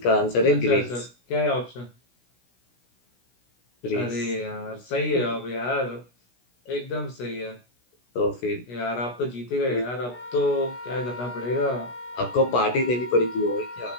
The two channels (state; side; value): late; right; 16 ms